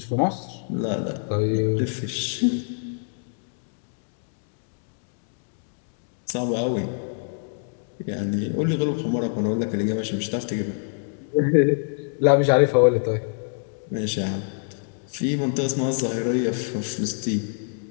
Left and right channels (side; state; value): right; silent; digital silence